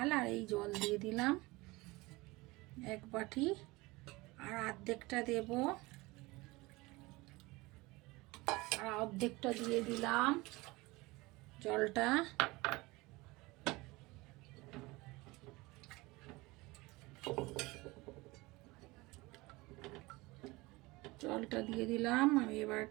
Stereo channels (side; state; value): left; quieter; 22.2 dB